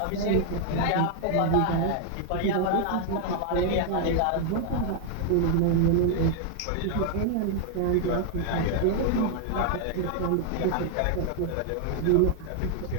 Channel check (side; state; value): both; different; correlation 0.00